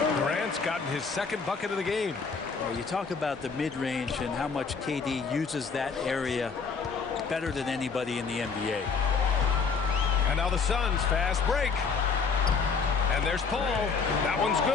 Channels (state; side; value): quieter; right; 5.3 dB